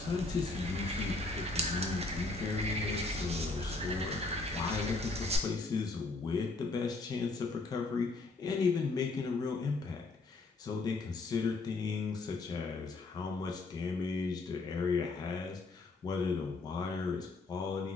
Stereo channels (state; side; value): quieter; right; 3.5 dB